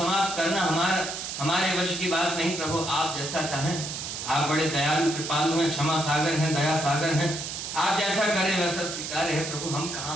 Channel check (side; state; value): right; noise; hiss, 6 dB below the sound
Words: करना हमारे वश की बात नहीं प्रभु, आप जैसा चाहें। आप बड़े दयालु कृपालु हैं, क्षमा सागर हैं, दया सागर हैं, आप जैसा करें वैसा स्वीकार है प्रभु। हम